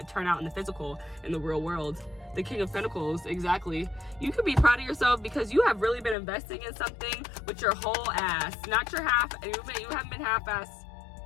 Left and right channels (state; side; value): drops out; right; at 6.2 s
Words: turn out in the physical, in the real world. The King of Pentacles, exactly. You could be proud of yourself because you have really been investing in something with your whole ass, not your half. You haven't been half-ass